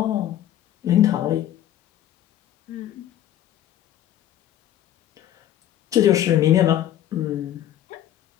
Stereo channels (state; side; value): quieter; right; 11.8 dB